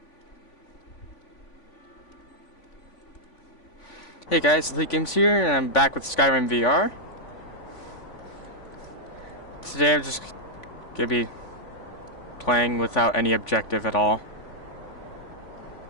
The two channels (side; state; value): right; late; 3.5 ms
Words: Hey guys, Elite Games here, and I'm back with Skyrim VR. Today I'm just gonna be playing without any objective at all.